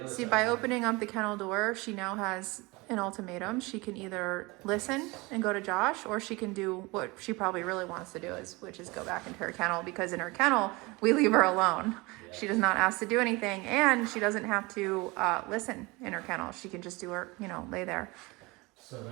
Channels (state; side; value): quieter; left; 24.3 dB